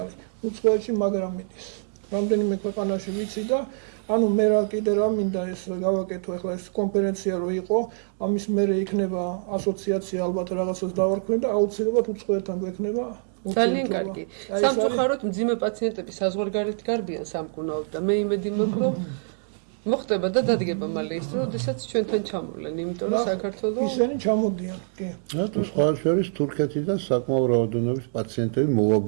უცხოეთში მაგრამ მიდის რამდენიმე ქვეყანაში ვიცი და ანუ მე რა კიდე რა მინდა ეს გავაკეთო ახლა ეს კონფერენცია რო იყო ამის მერე იქნება ასოციაცია ალბათ რაღაცას დავარქვენ და აუცილებლად უცხოეთთან გვექნება ძალიან კარგი. სამწუხაროდ მძიმე პაციენტები საზღვარგარეთ გარბიან სამკურნალოდ და მე იმედი მაქვს რომ მოხდება და დადგება მალე ის რომ შესაძ ჩვენთან ჩამოვლენ იმიტომ რომ საქართველოს ისინი ჩამოდიან კი თუ სხვა შორის თურქეთიდან საკმაო რაოდენობის პაციენტები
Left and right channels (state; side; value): silent; left; digital silence